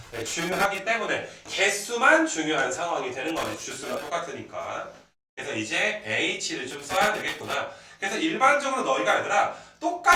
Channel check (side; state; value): both; identical; correlation 1.00